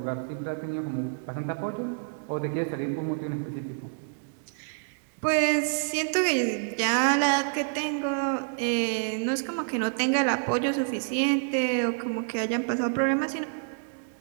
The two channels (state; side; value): silent; left; digital silence